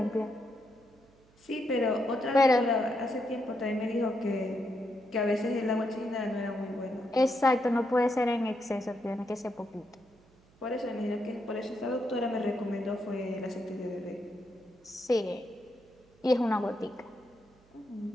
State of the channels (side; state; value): right; noise; hum, 30 dB below the sound